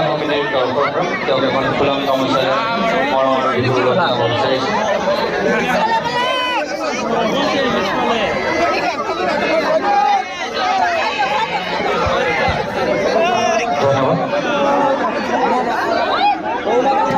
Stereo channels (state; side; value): identical; both; correlation 1.00